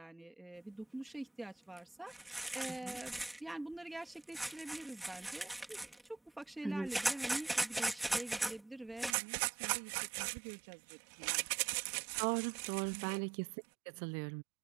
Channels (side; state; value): left; drops out; at 9.2 s